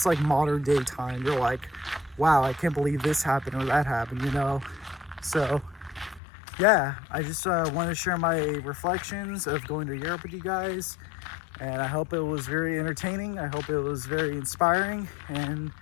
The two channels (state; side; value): drops out; right; at 6.2 s